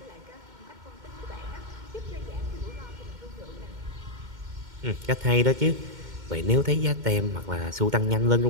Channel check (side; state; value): left; late; 2.1 ms